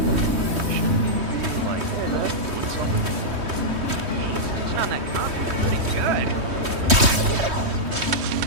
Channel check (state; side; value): late; left; 3.2 ms